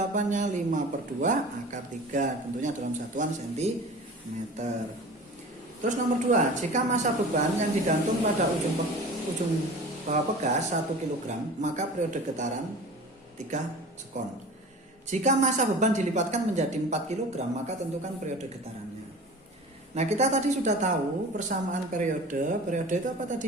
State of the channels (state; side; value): normal; both; correlation 0.38